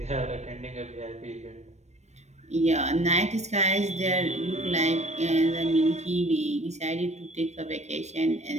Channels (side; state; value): left; late; 0.32 ms